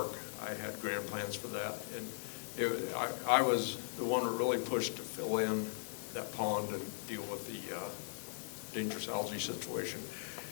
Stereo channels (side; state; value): right; silent; digital silence